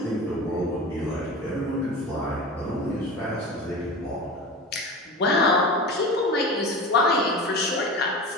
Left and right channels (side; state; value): both; normal; correlation 0.31